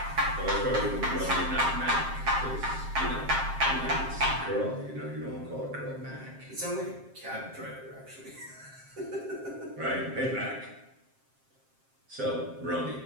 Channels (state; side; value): late; left; 7.5 ms